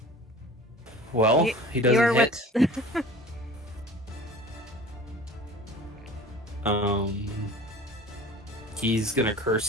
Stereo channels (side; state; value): both; normal; correlation 0.42